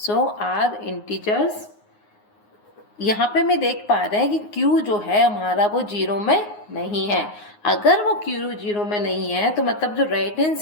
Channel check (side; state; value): right; late; 9.6 ms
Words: Are integers. यहाँ पे मैं देख पा रहे हैं कि Q जो है हमारा वो 0 में नहीं है। अगर वो Q 0 में नहीं है तो मतलब जो राइट हैंड